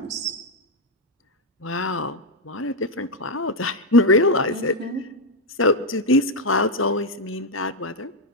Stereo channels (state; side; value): normal; both; correlation 0.02